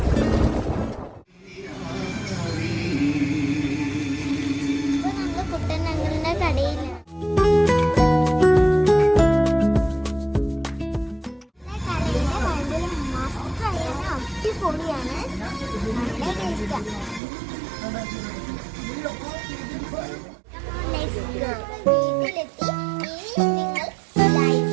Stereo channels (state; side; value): drops out; left; at 17.2 s